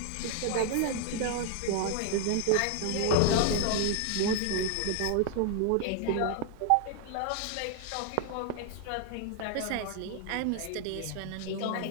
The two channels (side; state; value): both; different; correlation 0.00